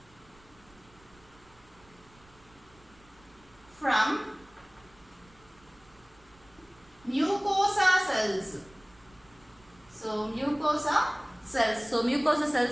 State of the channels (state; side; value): noise; right; rumble, 28 dB below the sound